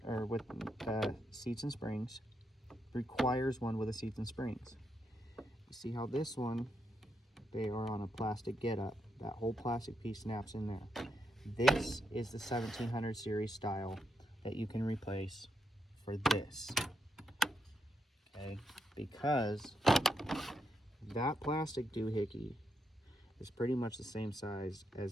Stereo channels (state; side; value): normal; both; correlation 0.81